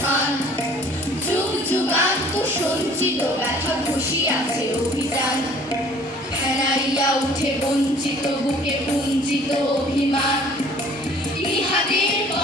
যুগ যুগান্ত সঞ্চিত ব্যথা ঘষিয়াছে অভিযান ফেরাইয়া উঠে বঞ্চিত বুকে পুঞ্জিত অভিমান ইহাদের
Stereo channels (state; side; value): normal; both; correlation 0.53